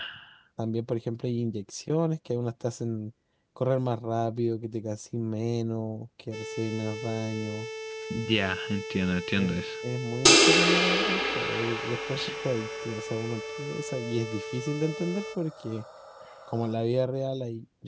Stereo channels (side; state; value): both; identical; correlation 1.00